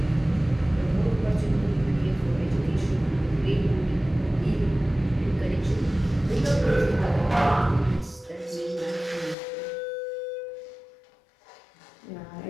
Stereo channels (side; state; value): right; drops out; at 9.3 s